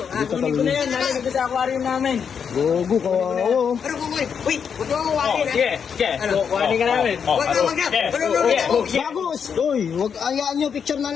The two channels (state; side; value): quieter; right; 7.0 dB